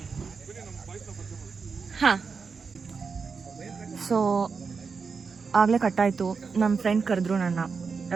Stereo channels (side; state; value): left; quieter; 5.2 dB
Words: ಹಾಂ, ಸೊ ಆಗಲೇ ಕಟ್ಟಾಯಿತು. ನಮ್ಮ ಫ್ರೆಂಡ್ ಕರೆದ್ರು ನನ್ನ